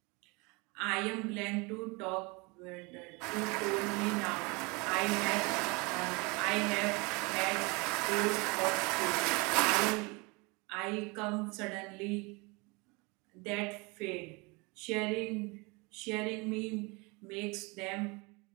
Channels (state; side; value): quieter; left; 27.7 dB